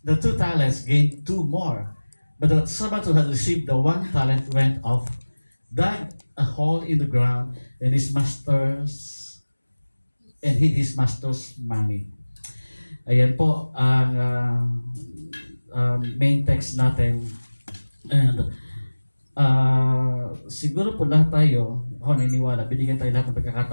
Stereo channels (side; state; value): both; inverted; correlation -1.00